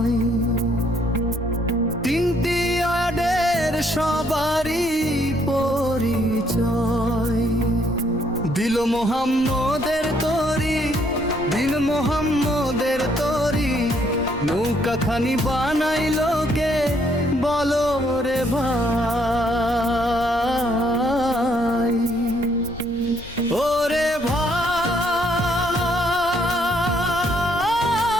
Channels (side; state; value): left; noise; rumble, 17 dB below the sound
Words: তিনটি আডের সবারই পরিচয় দিল মোহাম্মদের তরি দিল মোহাম্মদের তরি নৌকাখানি বানাইলো কে বলো রে ভাই ওরে